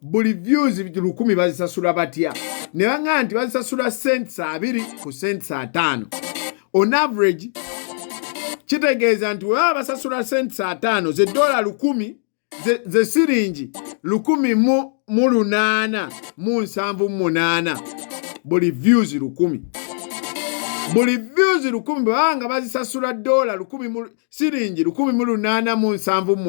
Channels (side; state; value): right; silent; digital silence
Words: buli views 1000 bazisasula batya ne banga nti bazisasula cents 2 ku cents 5 on average kitegeeza nti wewe basasula cents 5 ze $10 ze siringi 1,878 buli views 1000 buli views 1000 banga bazisasula $10 siringi